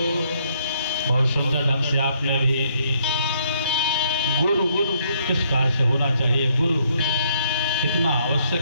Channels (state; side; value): inverted; both; correlation -0.70